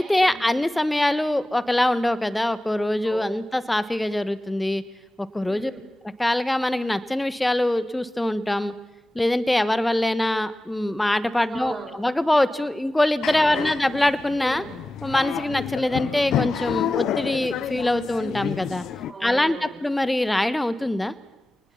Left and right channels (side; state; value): both; normal; correlation 0.95